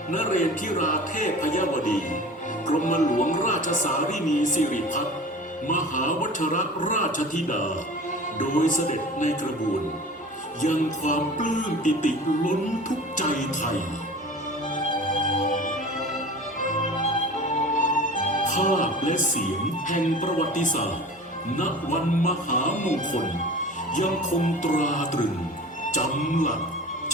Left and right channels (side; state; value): both; normal; correlation 0.38